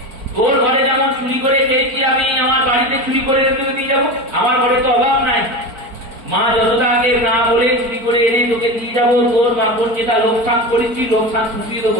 তোর ঘরে যেমন চুরি করে খেয়েছি আমি, আমার বাড়িতে চুরি করে রেখে দিয়ে যাবো? আমার ঘরে তো অভাব নাই। মা যশোদাকে না বলে চুরি করে এনে তোকে দিয়ে যাবো, তোর বাপন যেটা লোকসান করেছি লোকসান ছুটিয়ে দেবো,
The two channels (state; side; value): late; left; 4.5 ms